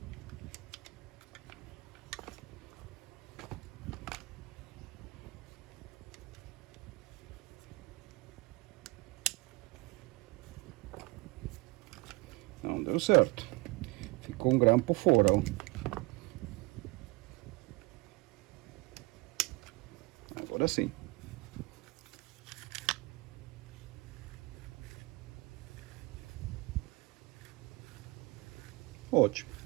Não deu certo. Ficou um grampo fora, ó. Agora sim. Ótimo.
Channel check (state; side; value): quieter; left; 24.7 dB